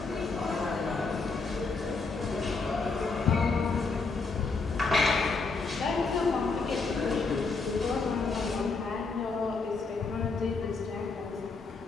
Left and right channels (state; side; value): quieter; right; 4.2 dB